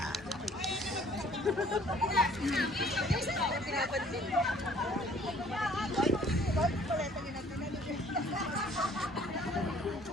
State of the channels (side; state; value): both; normal; correlation 0.56